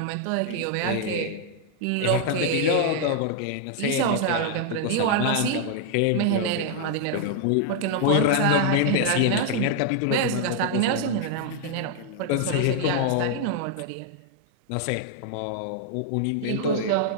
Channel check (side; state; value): both; different; correlation 0.00